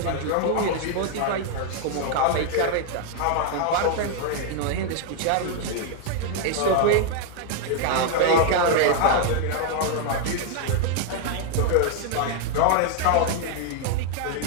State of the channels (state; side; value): different; both; correlation 0.00